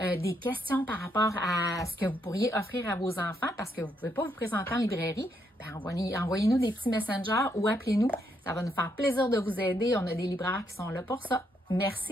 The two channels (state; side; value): normal; both; correlation 0.76